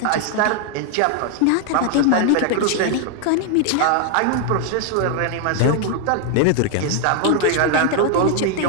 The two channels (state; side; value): different; both; correlation 0.00